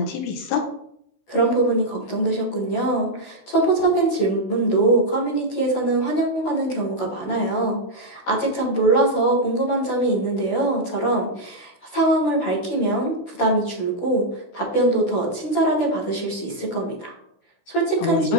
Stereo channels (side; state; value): right; late; 16 ms